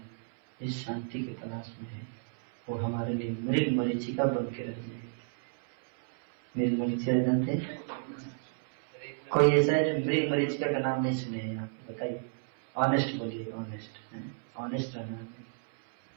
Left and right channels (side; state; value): left; silent; 57 dB below the other